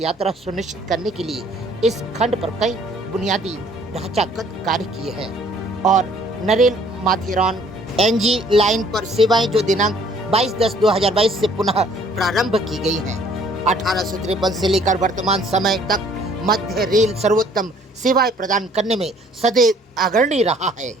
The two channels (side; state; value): both; normal; correlation 0.58